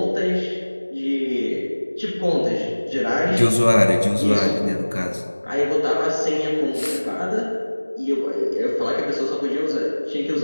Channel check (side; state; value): both; inverted; correlation -1.00